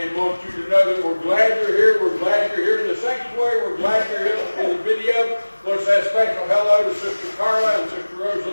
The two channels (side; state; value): both; inverted; correlation -1.00